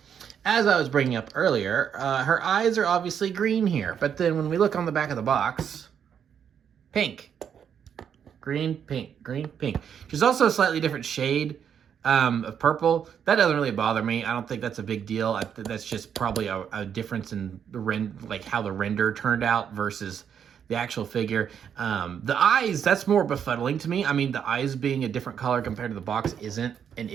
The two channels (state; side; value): quieter; left; 8.1 dB